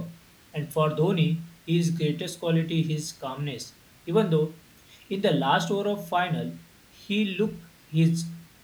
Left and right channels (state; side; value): identical; both; correlation 1.00